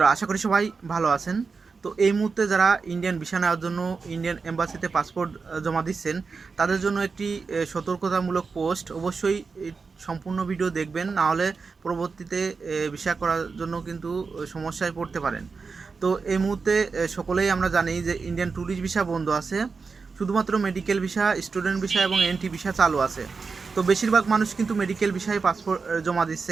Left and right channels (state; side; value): quieter; left; 4.8 dB